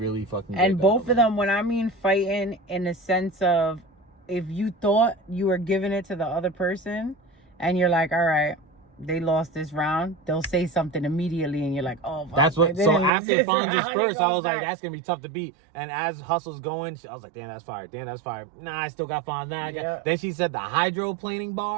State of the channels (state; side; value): drops out; left; at 13.1 s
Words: fucking great And both battle, of them, when I mean fighting in the sense of, if you thought you were giving it to the other person, and you're like, all right, they lost this round, they'll say something immediately, and you're like, oh, fuck, that's what. So after Fonz's first, I was like, that's gonna be tough to beat. And as Hustle's going, I was like, damn, that's fire. Damn, that's fire. Nah, I still got Fonz. Nah, then she said the hydroplaning